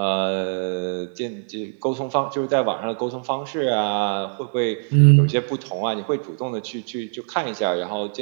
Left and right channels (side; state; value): left; silent; digital silence